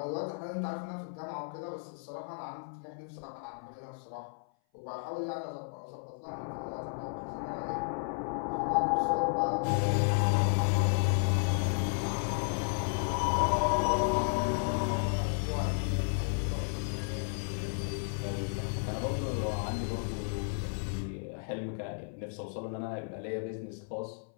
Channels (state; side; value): silent; right; 56 dB below the other